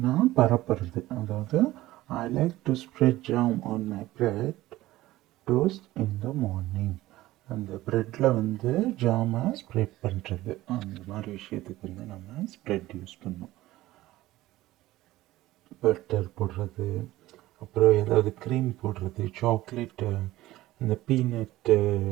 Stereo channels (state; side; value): quieter; left; 16.7 dB